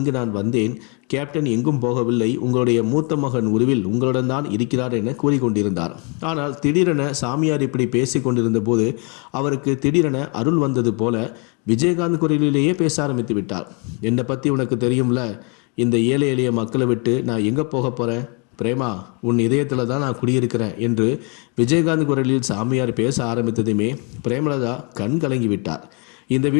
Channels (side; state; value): right; quieter; 34.4 dB